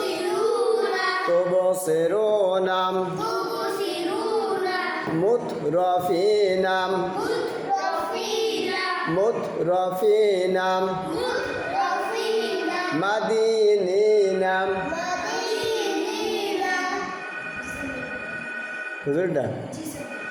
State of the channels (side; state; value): both; identical; correlation 1.00